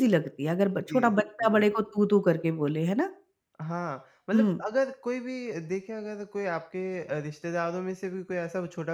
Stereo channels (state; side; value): identical; both; correlation 1.00